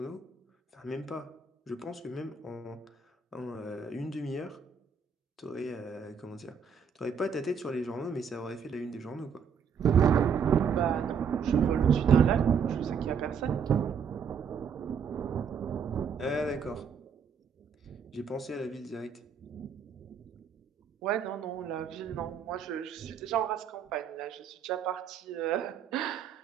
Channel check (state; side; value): quieter; left; 6.5 dB